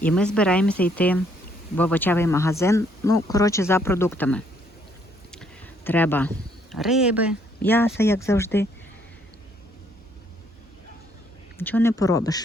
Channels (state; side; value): normal; both; correlation 0.68